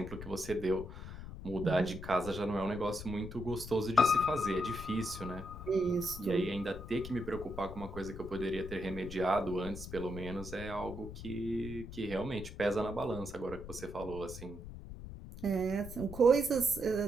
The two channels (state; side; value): noise; left; rumble, 11 dB below the sound